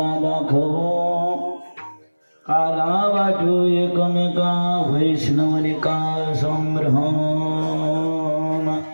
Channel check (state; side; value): inverted; both; correlation -1.00